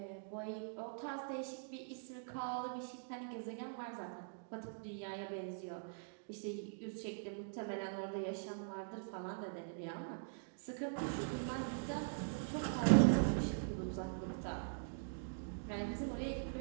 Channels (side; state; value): left; silent; digital silence